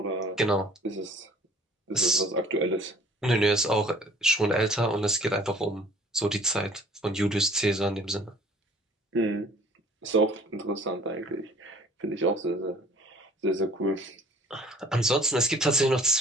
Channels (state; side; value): normal; both; correlation 0.52